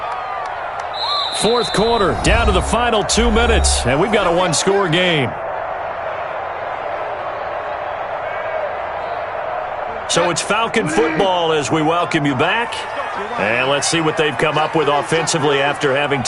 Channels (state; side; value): identical; both; correlation 1.00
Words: Fourth quarter, down to the final 2 minutes, and we've got a 1-score game. So it's Falcon football as we welcome you back. And let's see what they've come up with offensively after having